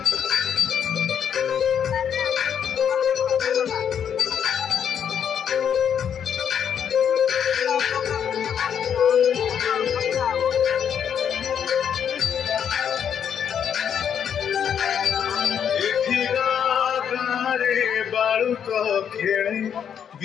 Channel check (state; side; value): quieter; right; 8.3 dB